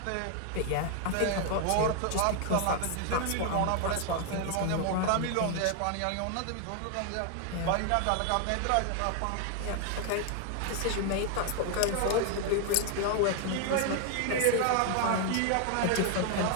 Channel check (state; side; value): different; both; correlation 0.00